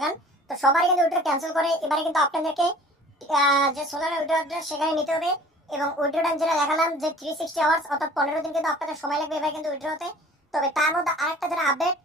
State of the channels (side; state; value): both; normal; correlation 0.48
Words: তো সবাই কিন্তু উইথড্র ক্যান্সেল করে এবারে কিন্তু আপনাদেরকে যে সোলানা উইথড্র অ্যাড্রেস সেখানে নিতে হবে। এবং উইথড্র টাইম যেটা দেখালাম যে 360 আওয়ার্স অর্থাৎ 15 দিন কিন্তু আপনাদের সময় লাগবে এবার কিন্তু উইথড্র হতে। তবে তার মধ্যে আরেকটা যেটা আপডেট